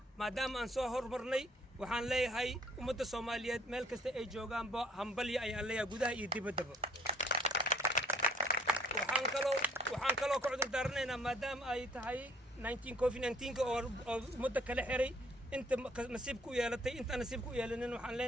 maadaama aan soo hormarnay waxaan leeyahay ummadda Soomaaliyeed meel kasta ay joogaanba hambalyo ayaan leeyahay gudaha iyo dibaddaba waxaan kaloo ka cudur daaranaynaa maadaama ay tahay COVID-19 oo muddo kala xiray inta nasiib ku yeelatay inta nasiib ku yeelanin waxaan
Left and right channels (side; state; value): both; normal; correlation 0.58